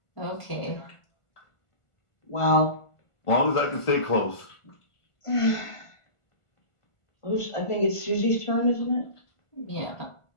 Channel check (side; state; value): right; late; 1.5 ms